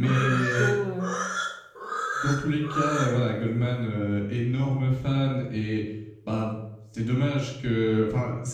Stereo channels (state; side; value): identical; both; correlation 1.00